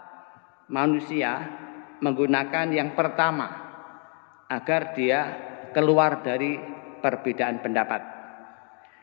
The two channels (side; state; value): right; quieter; 39.3 dB